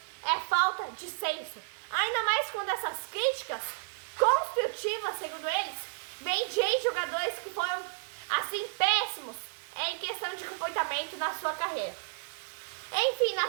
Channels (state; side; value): silent; left; digital silence